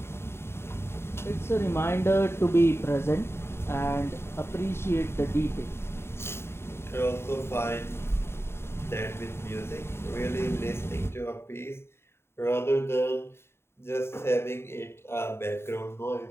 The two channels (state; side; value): late; right; 0.12 ms